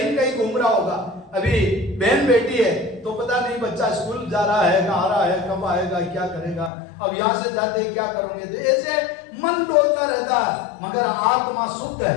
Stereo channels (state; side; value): drops out; right; at 6.7 s